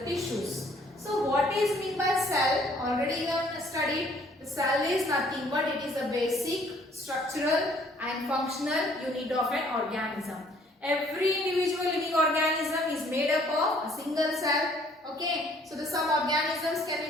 tissues. So what is mean by cell? Already you have studied. The cell is nothing but it is a basic structural and functional unit of an organism. Every individual living organism is made up of a single cell. Okay, so some organisms can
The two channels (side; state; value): both; normal; correlation 0.60